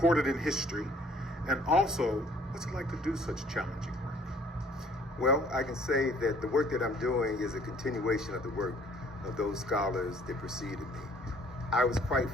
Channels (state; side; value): normal; both; correlation 0.58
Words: in history? And also, what's it like to do such challenging work? Well, I can say that the work that I'm doing is a continuation of the work of those scholars that preceded me. I was quite